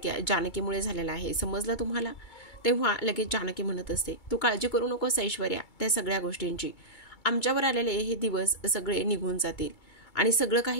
जानकीमुळे झालेलं आहे, समजलं तुम्हाला? तेव्हा लगेच जानकी म्हणत असते, तू काळजी करू नकोस ऐश्वर्या त्या सगळ्या गोष्टींची. आमच्यावर आलेले हे दिवस सगळे निघून जातील आणि सगळं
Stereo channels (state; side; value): late; right; 2.3 ms